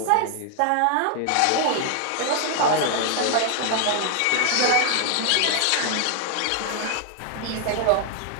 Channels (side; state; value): both; different; correlation 0.00